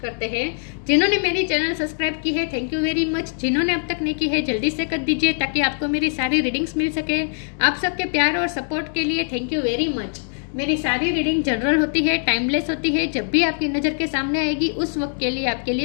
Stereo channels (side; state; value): right; silent; digital silence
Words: करते हैं। जिन्होंने मेरी चैनल सब्सक्राइब की है, थैंक यू वेरी मच। जिन्होंने अब तक नहीं की है, जल्दी से कर दीजिए ताकि आपको मेरी सारी रीडिंग्स मिल सके। आप सबके प्यार और सपोर्ट के लिए थैंक यू वेरी मच। मेरी सारी रीडिंग जनरल होती है, टाइमलेस होती है। जब भी आपकी नज़र के सामने आएगी उस वक्त के लिए आपके